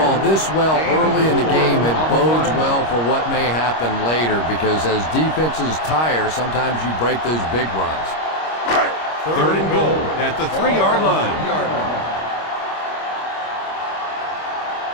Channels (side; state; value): right; late; 25 ms